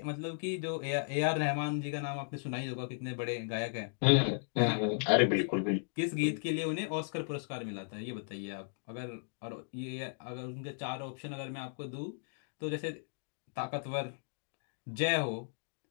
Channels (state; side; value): silent; right; digital silence